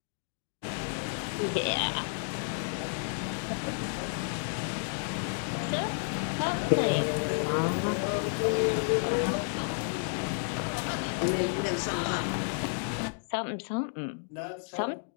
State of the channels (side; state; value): right; silent; digital silence